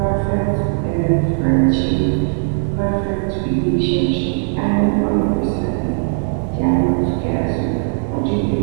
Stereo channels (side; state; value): left; silent; 67 dB below the other